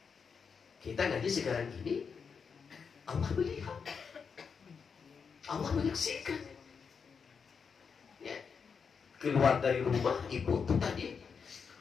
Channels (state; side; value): quieter; right; 6.0 dB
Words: Kita ngaji sekarang ini, Allah melihat, Allah menyaksikan. Ya. Keluar dari rumah ibu itu tadi